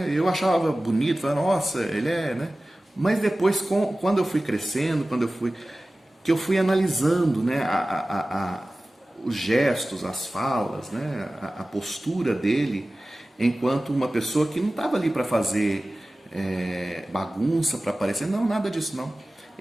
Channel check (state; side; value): normal; both; correlation 0.97